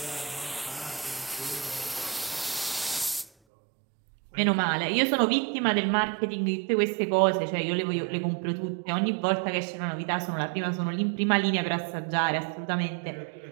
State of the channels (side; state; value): left; drops out; at 3.3 s